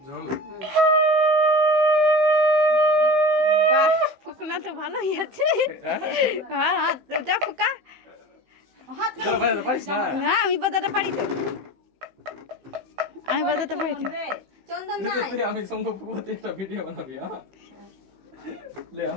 জল বাহ, ফুকনা তো ভালোই আছে। হ্যাঁ হ্যাঁ তো যা ফুকা। তোরা বাজাতে পারিস না? না আমি বাজাতে পারি তো, আমি বাজাতে পারি তো। চন্দন তুই তো নাই তুই আমি সঙ্গ পুকুরতে একটা ভিডিও বানাবি, হ্যাঁ ले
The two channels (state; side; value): late; left; 15 ms